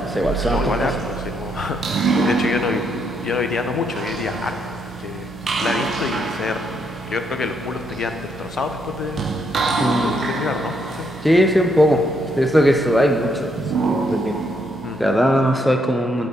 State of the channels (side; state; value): both; normal; correlation 0.75